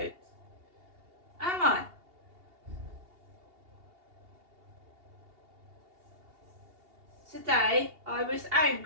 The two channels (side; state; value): left; late; 2.8 ms